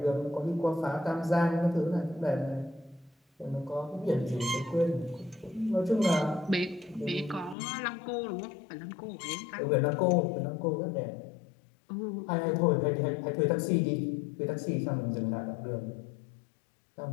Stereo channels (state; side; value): drops out; right; at 7.6 s